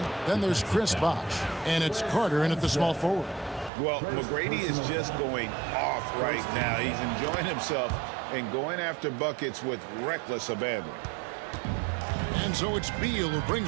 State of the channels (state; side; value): drops out; left; at 3.7 s